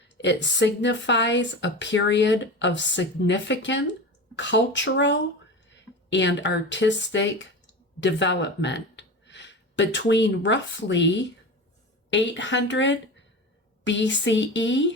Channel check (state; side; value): normal; both; correlation 0.29